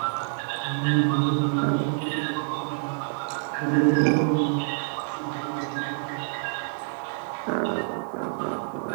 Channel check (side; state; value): left; silent; 59 dB below the other